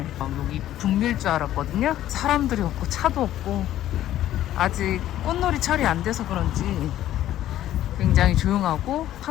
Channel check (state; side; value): quieter; right; 12.9 dB